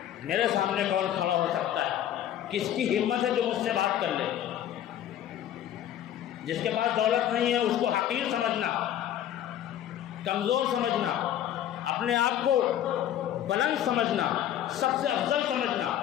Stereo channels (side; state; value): right; quieter; 11.2 dB